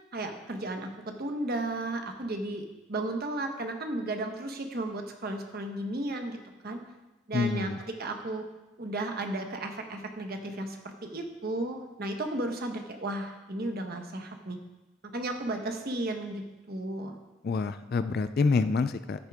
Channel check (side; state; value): both; normal; correlation 0.58